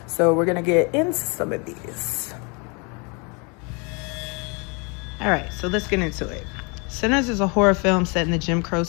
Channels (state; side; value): quieter; right; 32.5 dB